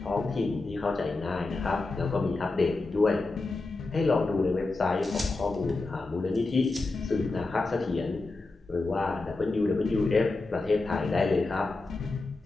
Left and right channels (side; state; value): right; quieter; 3.4 dB